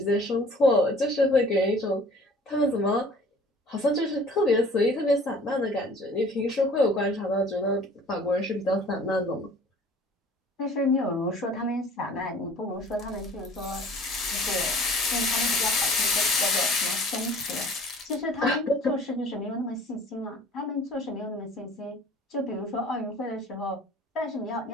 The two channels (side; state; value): both; normal; correlation 0.49